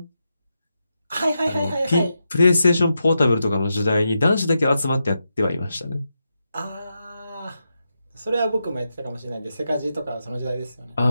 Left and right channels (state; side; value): inverted; both; correlation -0.87